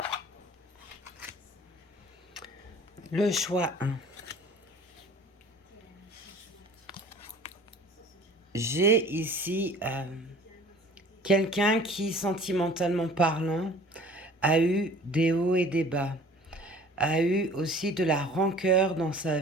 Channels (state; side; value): normal; both; correlation 0.48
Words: Le choix 1. J'ai ici quelqu'un qui, sentimentalement parlant, a eu des hauts et des bas, a eu aussi de la rancœur dans sa